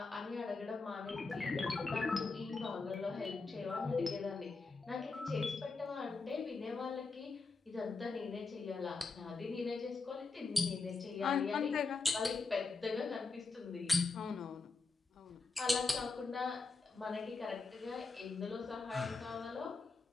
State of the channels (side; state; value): right; quieter; 4.0 dB